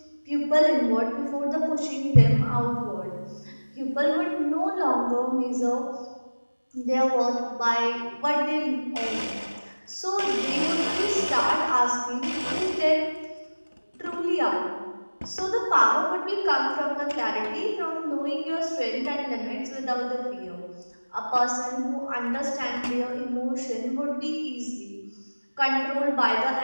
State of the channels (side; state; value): both; inverted; correlation -1.00